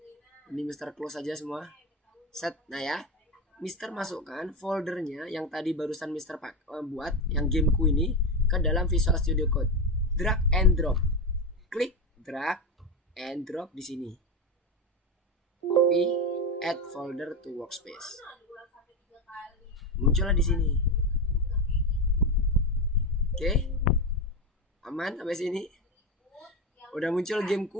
Ini Mister close aja semua. Set. Nah ya, Mister masukkan foldernya yang tadi barusan Mister buat yang gameku ini ke dalam Visual Studio Code. Drag and drop. Klik drag and drop di sini. Copy, add folder to workspace. Muncullah di sini. Oke. Aman sampai sini. Udah muncul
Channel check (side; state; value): both; normal; correlation 0.16